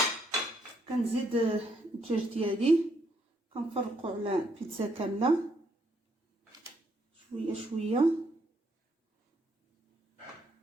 كنزيد الدجاج ديالي كنفرقو على بيتزا كامله شويه شويه.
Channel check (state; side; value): normal; both; correlation 0.73